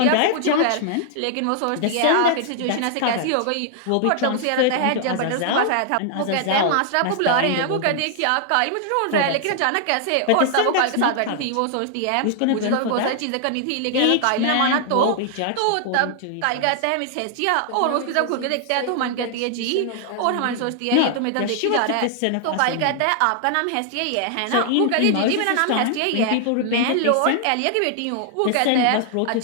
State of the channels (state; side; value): different; both; correlation 0.00